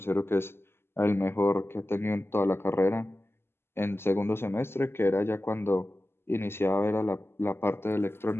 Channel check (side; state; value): right; late; 0.12 ms